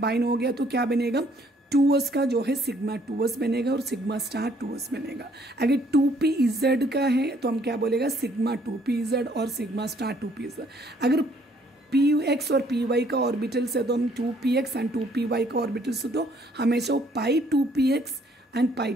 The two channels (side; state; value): both; normal; correlation 0.64